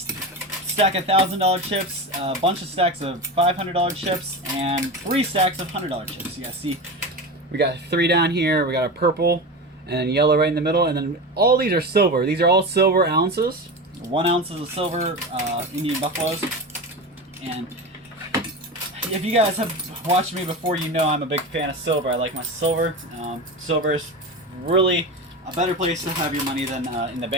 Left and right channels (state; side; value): normal; both; correlation 0.24